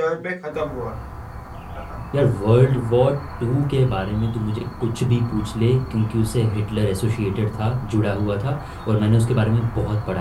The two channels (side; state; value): both; identical; correlation 1.00